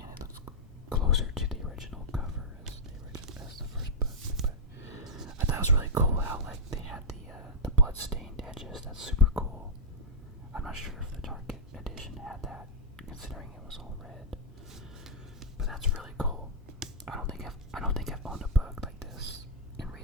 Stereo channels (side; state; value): both; normal; correlation -0.07